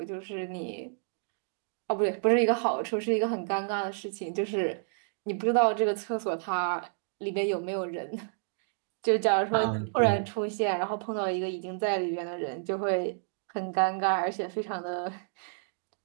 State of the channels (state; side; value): silent; left; digital silence